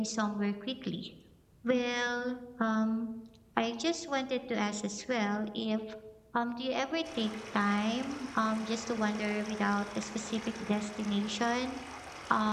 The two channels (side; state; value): both; identical; correlation 1.00